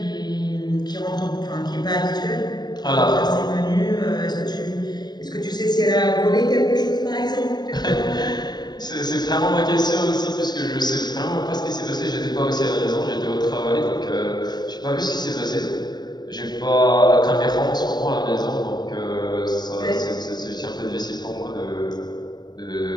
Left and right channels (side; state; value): right; late; 0.20 ms